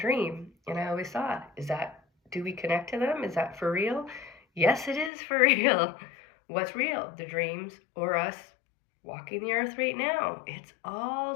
and I always thought, do we connect to them? Is that for real? Yes, it is for real. What's real? The dreams, or us walking the earth right now? It's all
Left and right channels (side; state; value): right; drops out; at 5.1 s